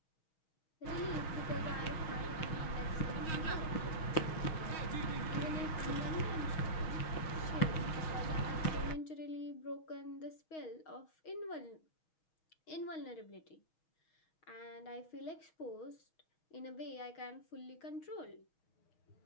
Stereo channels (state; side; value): late; right; 6.3 ms